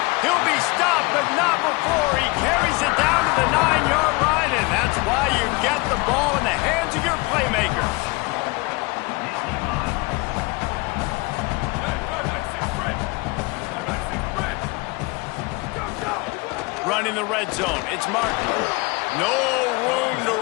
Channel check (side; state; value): right; quieter; 25.6 dB